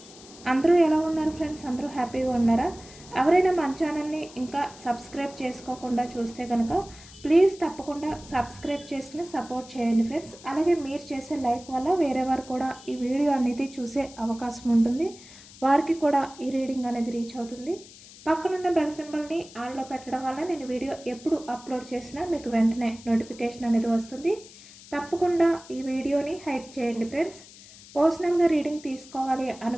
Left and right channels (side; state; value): left; noise; hiss, 20 dB below the sound